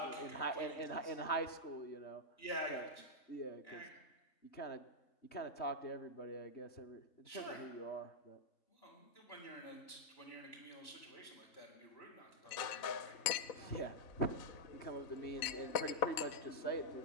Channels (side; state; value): right; late; 4.0 ms